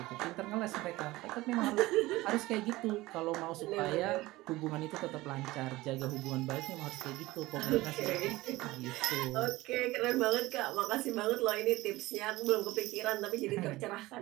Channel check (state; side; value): quieter; left; 19.0 dB